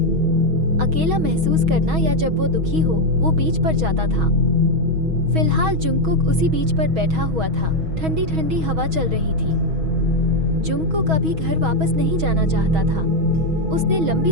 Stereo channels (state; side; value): late; left; 6.3 ms